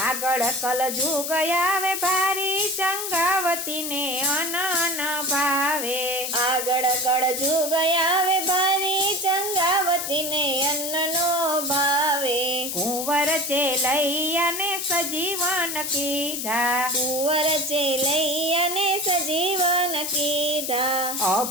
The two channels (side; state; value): left; noise; hiss, 4 dB below the sound